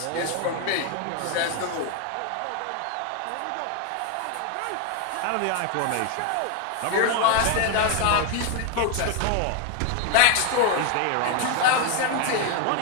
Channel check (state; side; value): different; both; correlation 0.01